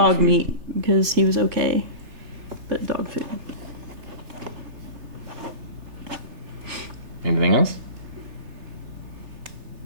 meat, because he was okay, but dog food. Anything else?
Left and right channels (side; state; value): left; late; 3.3 ms